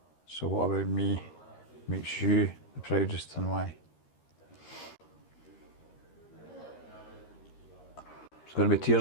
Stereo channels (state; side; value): late; right; 13 ms